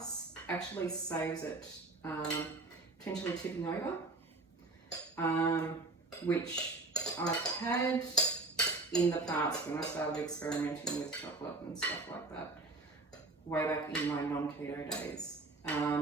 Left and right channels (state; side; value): quieter; left; 3.3 dB